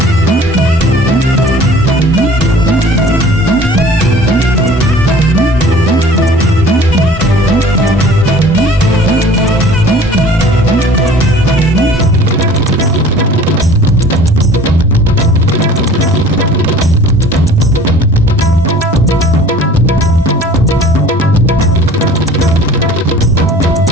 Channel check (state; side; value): normal; both; correlation 0.48